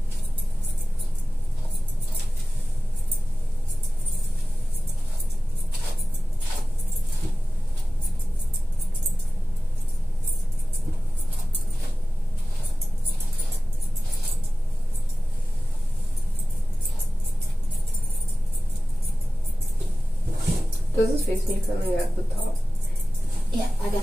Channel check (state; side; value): normal; both; correlation 0.96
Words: Does his face need something at the top? Yeah, I